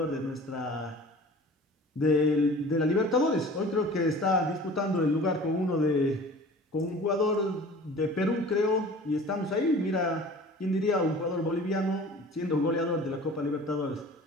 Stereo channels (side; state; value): both; normal; correlation 0.43